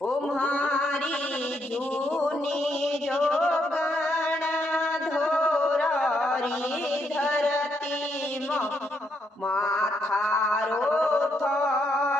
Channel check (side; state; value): both; normal; correlation 0.76